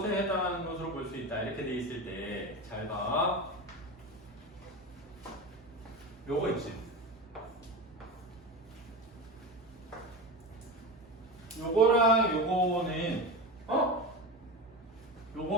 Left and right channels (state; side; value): normal; both; correlation 0.24